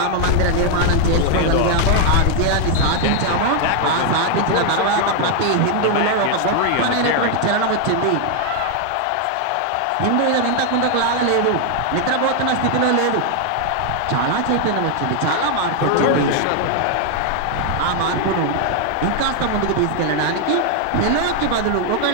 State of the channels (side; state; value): both; different; correlation 0.00